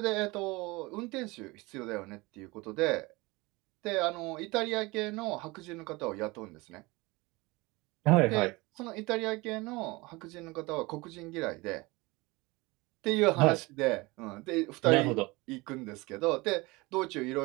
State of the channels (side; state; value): left; quieter; 23.5 dB